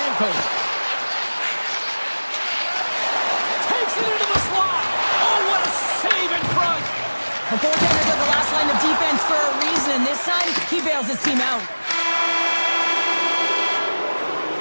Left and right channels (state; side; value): inverted; both; correlation -1.00